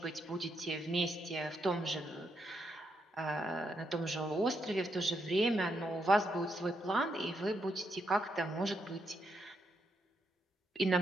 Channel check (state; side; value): normal; both; correlation 0.79